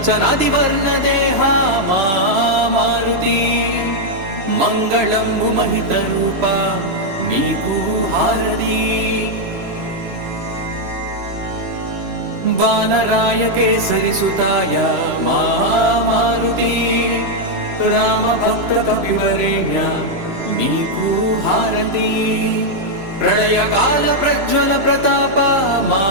వర్ణ దేహ మారుతి మంగళంబు మహిత రూప నీకు హారతి వానరాయ కేసరి సుతాయ మారుతి రామ భక్త కపివరేణ్య నీకు హారతి ప్రళయకాల ప్రజ్వల ప్రతాప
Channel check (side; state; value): left; late; 3.0 ms